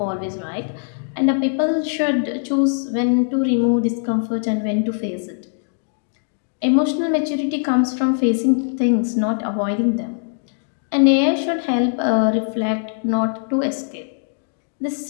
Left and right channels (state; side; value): silent; right; digital silence